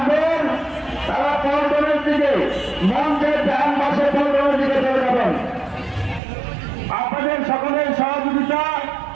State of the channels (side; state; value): left; drops out; at 6.2 s